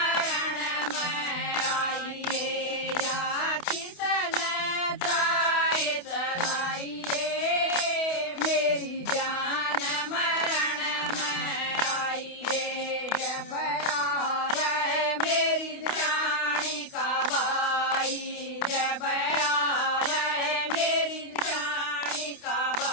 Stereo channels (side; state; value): right; late; 28 ms